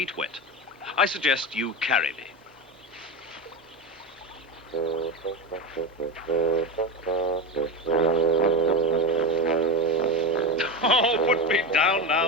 wet. I suggest you carry me. Oh, put me down now,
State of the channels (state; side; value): normal; both; correlation 0.19